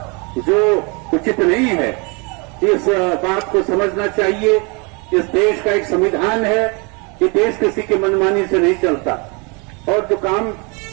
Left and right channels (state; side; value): quieter; left; 31.3 dB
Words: जो उचित नहीं है। इस बात को समझना चाहिए। इस देश का एक संविधान है, ये देश किसी की मनमानी से नहीं चलता और जो काम